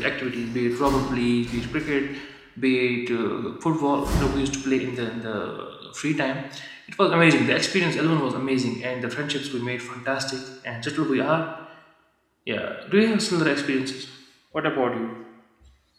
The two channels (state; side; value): identical; both; correlation 1.00